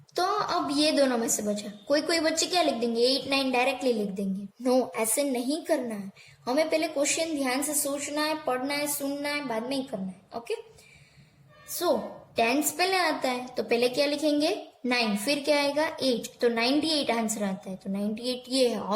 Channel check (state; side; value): identical; both; correlation 1.00